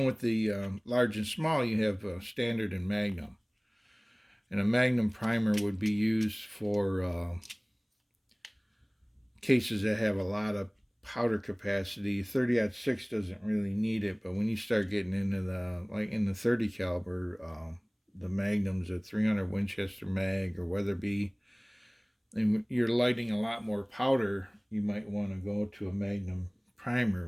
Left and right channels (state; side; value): identical; both; correlation 1.00